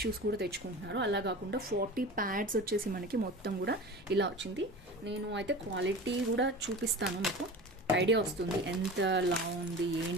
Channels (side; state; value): both; normal; correlation 0.34